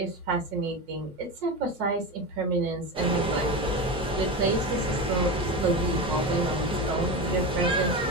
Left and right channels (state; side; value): normal; both; correlation 0.21